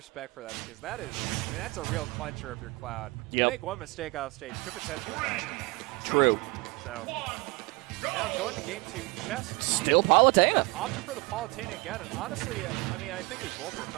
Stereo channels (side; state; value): left; quieter; 25.2 dB